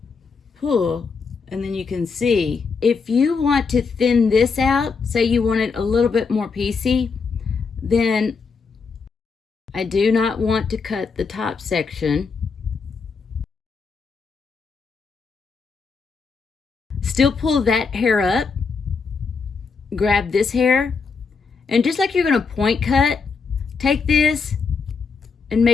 pull, and then you can see. If you want to thin this out, say you want it a little bit more piecey, then I do not want to cut the top section. Still pull that hair up, grab this hair, and just like you're going to point cut, take this and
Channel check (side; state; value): right; quieter; 5.1 dB